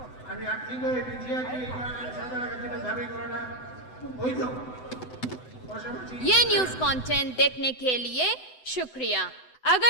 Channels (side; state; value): right; late; 7.9 ms